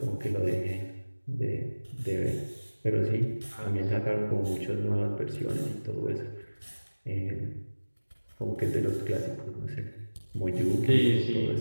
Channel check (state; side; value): inverted; both; correlation -1.00